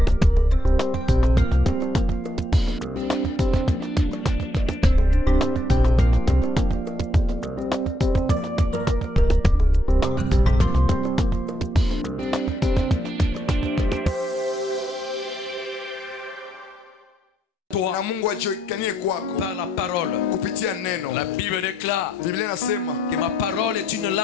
Na Mungu ajiokanie kwako par la parole. kupitia neno. La Bible déclare Biblia inasema que ma parole est une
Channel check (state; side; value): normal; both; correlation 0.77